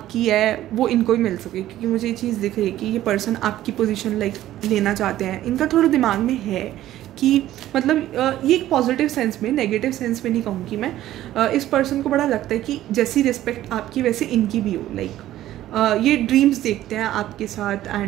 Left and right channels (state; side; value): quieter; left; 13.7 dB